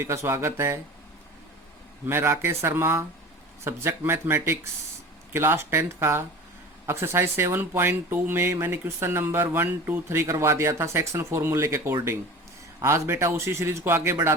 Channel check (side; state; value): both; normal; correlation 0.37